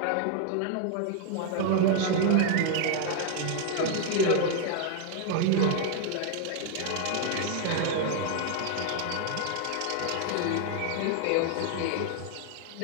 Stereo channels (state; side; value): different; both; correlation 0.00